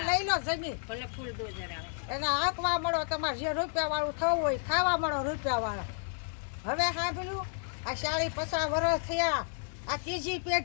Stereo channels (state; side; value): silent; right; 57 dB below the other